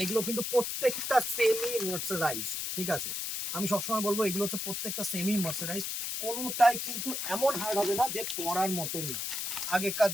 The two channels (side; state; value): left; noise; hiss, 3 dB below the sound